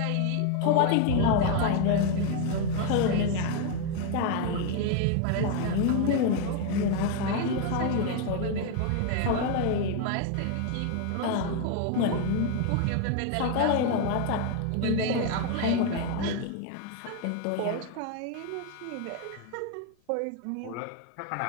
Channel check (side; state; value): both; different; correlation 0.01